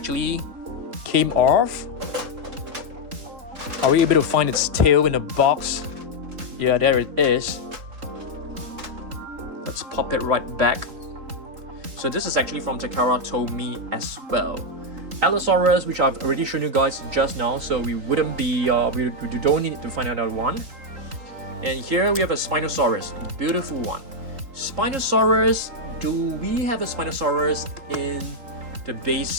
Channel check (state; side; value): late; left; 3.8 ms